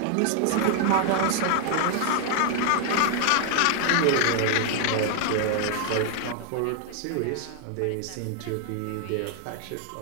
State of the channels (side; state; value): both; different; correlation 0.00